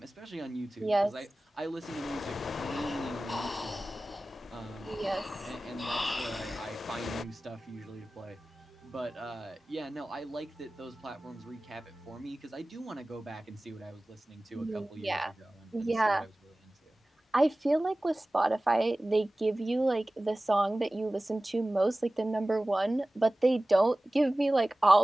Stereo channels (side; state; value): both; normal; correlation 0.97